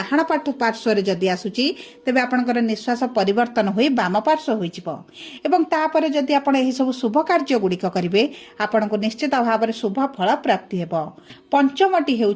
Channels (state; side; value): identical; both; correlation 1.00